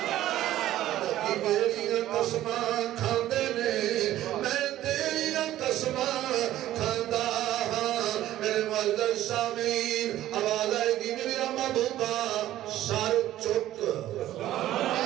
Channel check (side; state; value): left; quieter; 13.7 dB